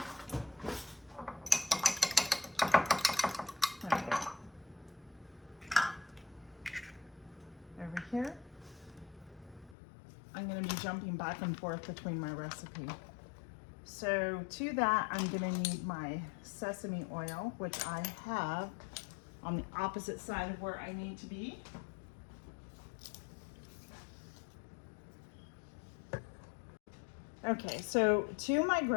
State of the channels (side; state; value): right; drops out; at 9.8 s